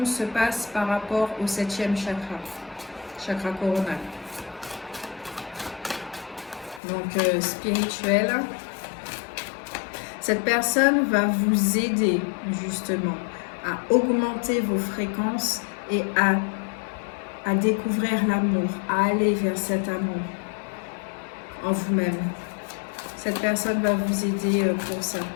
se passe par rapport au 7e chakra, chakra coronal. Donc spirituel. Cette personne va vous aider justement à augmenter vos fréquences et à découvrir l'amour, à aller vers cet amour en vous-même. Cette personne va vous aider pour ça.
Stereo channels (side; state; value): right; drops out; at 6.8 s